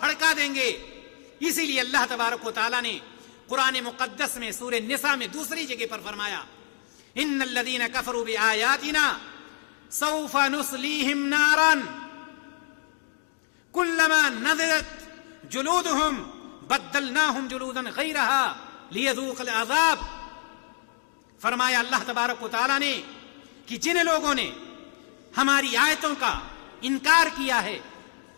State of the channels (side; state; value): right; silent; 58 dB below the other